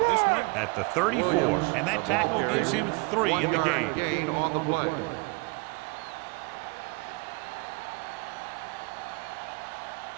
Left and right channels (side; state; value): left; quieter; 28.3 dB